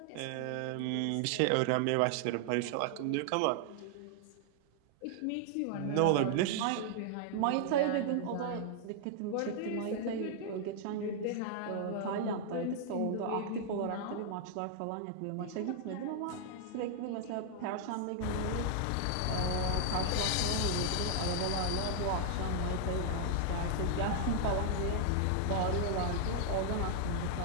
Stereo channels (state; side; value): different; both; correlation -0.01